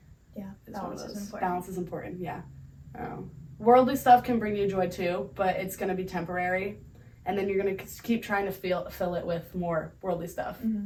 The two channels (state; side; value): identical; both; correlation 1.00